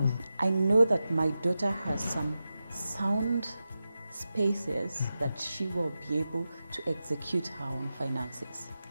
I know that my daughter has some sound spaces that she will be able to execute her own finances.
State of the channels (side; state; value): both; inverted; correlation -0.92